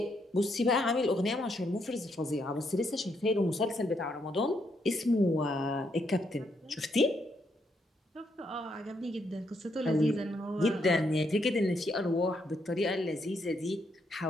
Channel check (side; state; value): both; normal; correlation 0.76